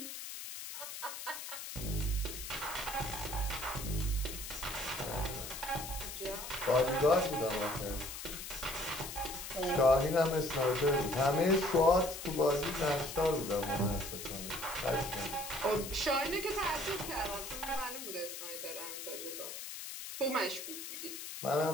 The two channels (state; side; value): noise; left; hiss, 8 dB below the sound